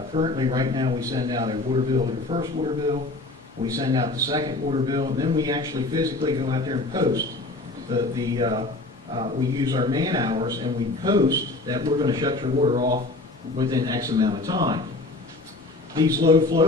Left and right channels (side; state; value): right; quieter; 3.1 dB